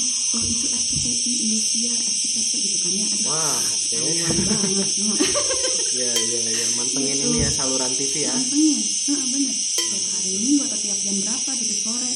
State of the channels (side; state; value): both; identical; correlation 1.00